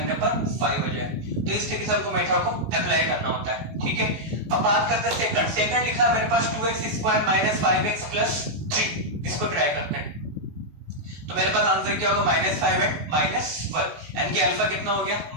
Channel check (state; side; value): late; left; 19 ms